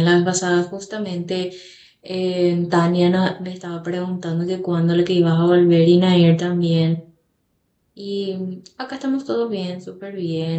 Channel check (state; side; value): identical; both; correlation 1.00